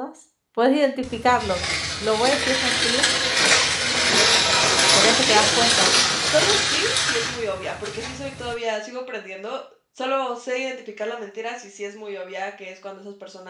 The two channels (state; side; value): identical; both; correlation 1.00